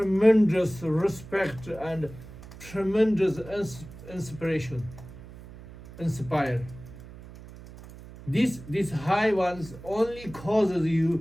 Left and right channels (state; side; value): noise; right; hum, 17 dB below the sound